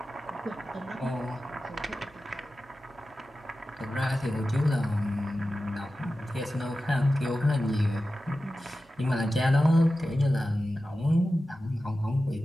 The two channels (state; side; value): normal; both; correlation 0.94